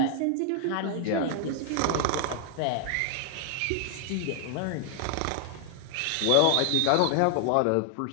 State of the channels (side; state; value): both; different; correlation 0.00